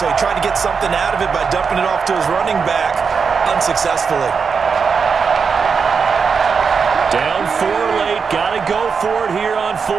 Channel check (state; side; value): quieter; left; 5.7 dB